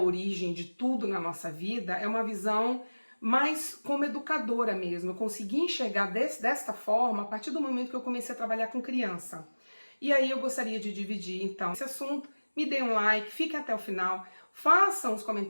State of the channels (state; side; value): inverted; both; correlation -1.00